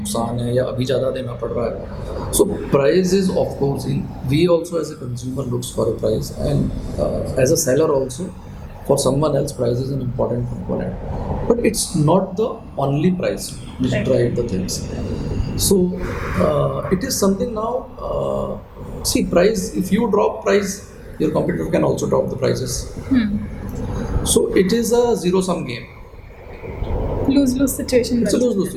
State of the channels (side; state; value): both; identical; correlation 1.00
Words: है, या अभी ज़्यादा देना पड़ रहा है. So price is of course, we also as a consumer looks for a price, and as a seller also for someone else price is an important component, but it's not the only price which drive the things. So it is something now, see, price, if you drop price, your competitor can also drop the prices. So it is a zero sum game, lose-lose situation. It's a lose-lose